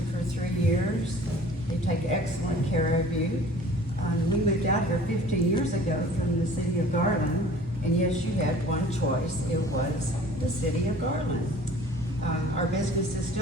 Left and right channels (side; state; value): both; normal; correlation 0.48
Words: for 3 years. They take excellent care of you. We moved out here 15 years ago from the city of Garland, and yes, you had one choice. It was the city of Garland. Our business is